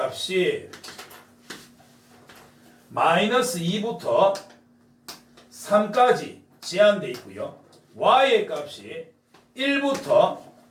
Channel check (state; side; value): identical; both; correlation 1.00